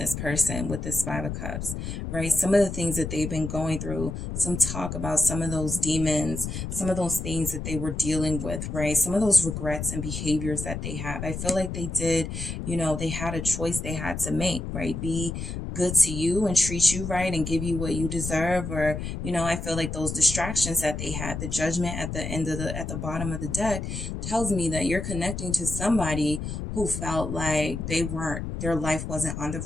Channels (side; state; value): left; noise; rumble, 5 dB below the sound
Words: person with this Five of Cups, right? Some of the things that they've been going through, some talk about some of those demons, some of those things that they were dealing with, right? Some of those regrets and behaviors that they have. I feel like they did, they had a choice they had to make, right? Be good to you and treat you right and give you what you deserve. Or, I feel like those distractions that they had, the Judgment at the bottom of the deck tells me that you're connecting to somebody who felt like their life wasn't on the